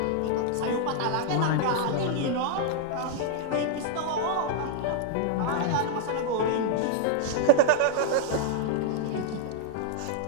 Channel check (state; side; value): different; both; correlation 0.00